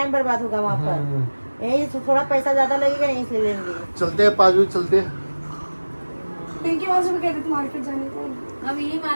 बर्बाद होगा वहाँ पर। यही थोड़ा पैसा ज्यादा लगेगा, यहीं से लेंगे। चलते हैं 5 बजे चलते हैं। पिंकी वहाँ से कह रही थी मार्केट जाने को। अब यही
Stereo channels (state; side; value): inverted; both; correlation -1.00